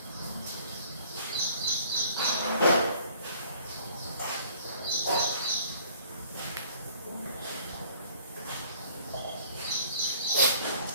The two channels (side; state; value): both; inverted; correlation -0.55